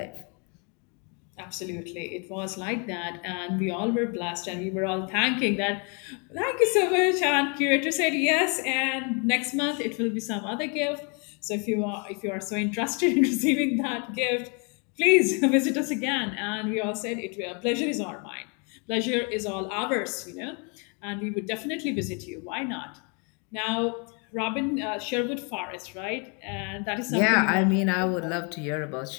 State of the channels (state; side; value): quieter; right; 35.0 dB